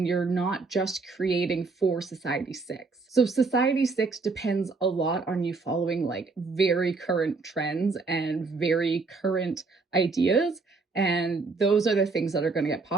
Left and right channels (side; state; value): left; quieter; 4.1 dB